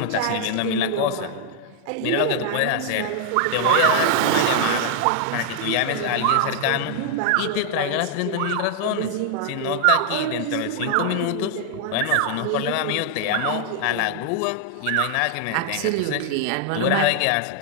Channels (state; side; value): different; both; correlation 0.00